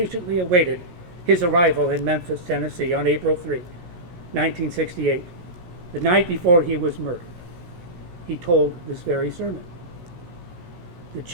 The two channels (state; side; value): late; left; 17 ms